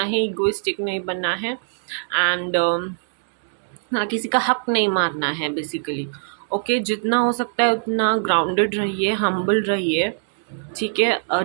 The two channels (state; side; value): silent; left; digital silence